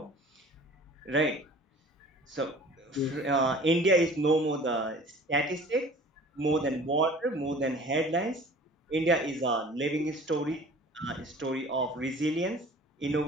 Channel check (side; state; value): both; normal; correlation 0.46